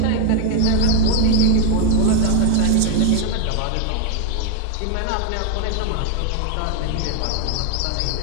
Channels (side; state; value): both; different; correlation 0.00